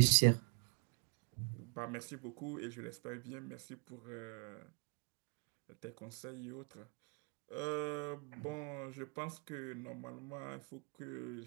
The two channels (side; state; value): left; quieter; 38.4 dB